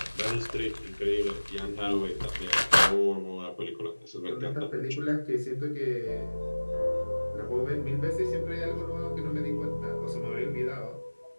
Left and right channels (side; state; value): both; inverted; correlation -1.00